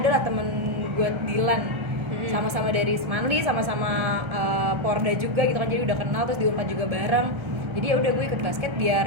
lah temen gue Dilan, sama-sama dari Semanli, sama-sama Porda juga gitu kan, jadi udah kenal, terus di Unpad juga bareng. Jadi ya udah gue ikut basket biar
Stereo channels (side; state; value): left; late; 1.3 ms